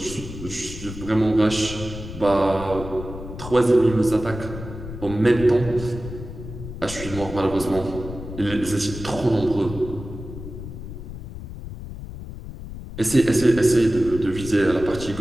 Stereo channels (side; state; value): left; noise; rumble, 10 dB below the sound